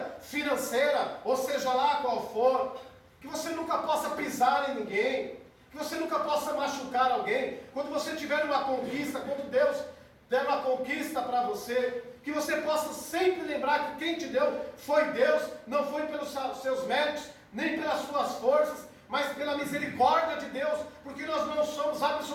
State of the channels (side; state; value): both; identical; correlation 1.00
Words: financeira, ou seja lá qual for, que você nunca possa pisar em ninguém, que você nunca possa machucar alguém. Quando você tiver uma conquista, quando Deus der uma conquista para você, que você possa sempre lembrar que quem te deu foi Deus, não foi pelos seus méritos, nem pelas suas forças, mas pela misericórdia de Deus, porque nós não somos